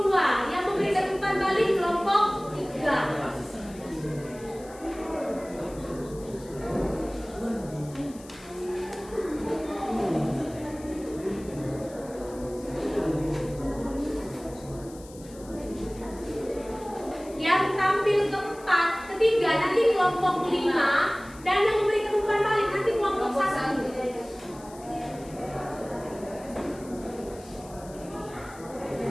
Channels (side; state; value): left; noise; hiss, 21 dB below the sound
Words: 2 yang memberikan umpan balik kelompok 3. Yang tampil keempat, ketiga nanti kelompok 5 dan yang memberikan umpan balik nanti kelompok 1.